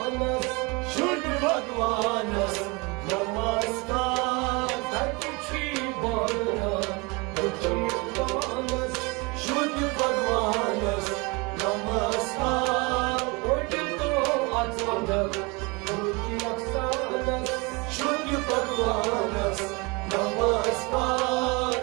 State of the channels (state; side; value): quieter; left; 27.5 dB